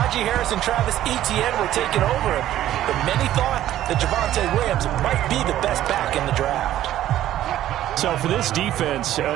Harris and Travis Etienne were taking over him. But many thought that Javonte Williams might be the best back in the draft. So for this defense,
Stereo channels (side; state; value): left; quieter; 12.9 dB